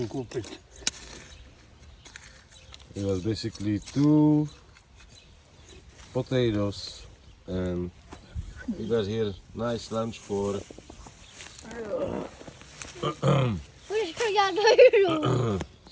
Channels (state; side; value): identical; both; correlation 1.00